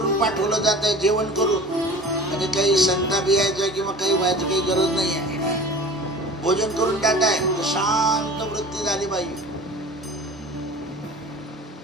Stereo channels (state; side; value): normal; both; correlation 0.40